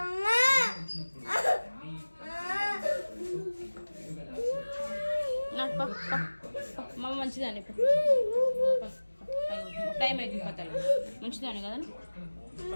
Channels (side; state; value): both; inverted; correlation -1.00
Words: మమ్మ మంచిదాన్ని టైం అవుతుంది పత్తలు మంచిదాన్ని కదా